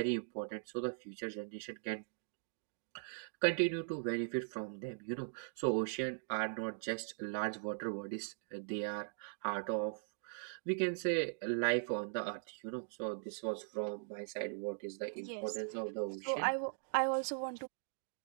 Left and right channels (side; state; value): left; silent; digital silence